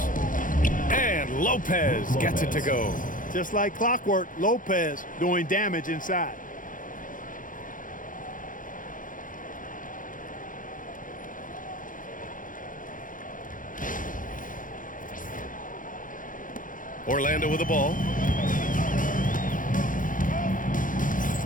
And Lopez gets it to go. Just like clockwork, Lopez doing damage inside. Orlando with the ball.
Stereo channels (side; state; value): right; late; 0.39 ms